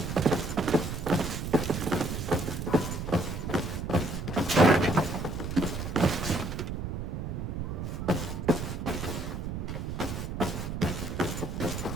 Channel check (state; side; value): noise; right; rumble, 4 dB below the sound